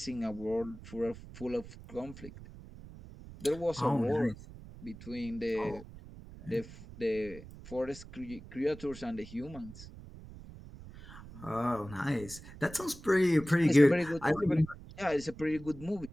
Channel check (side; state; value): right; noise; rumble, 16 dB below the sound